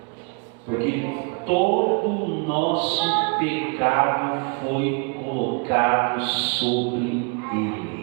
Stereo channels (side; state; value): left; quieter; 35.2 dB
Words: Porque todo o nosso pecado foi colocado sobre